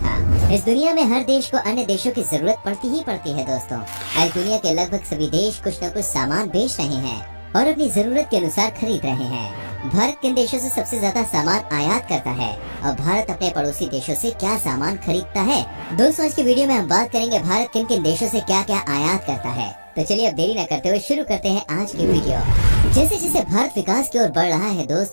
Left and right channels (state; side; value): inverted; both; correlation -1.00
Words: इस दुनिया में हर देश को अन्य देशों की जरूरत पड़ती ही पड़ती है दोस्तों। आज दुनिया के लगभग सभी देश कुछ न कुछ सामान बेच रहे हैं और अपनी जरूरत के अनुसार खरीद रहे हैं। भारत किन देशों से सबसे ज्यादा सामान आयात करता है और भारत अपने पड़ोसी देशों से क्या सामान खरीदता है? दोस्तों आज की वीडियो में हम बात करेंगे भारत किन किन देशों से क्या क्या आयात करता है। तो चलिए अब देरी न करते हुए शुरू करते हैं आज की वीडियो। जैसे जैसे भारत विकास की ओर बढ़ रहा है